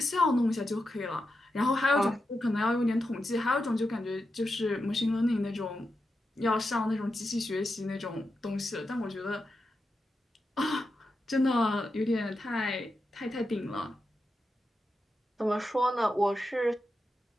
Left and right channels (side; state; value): both; normal; correlation 0.88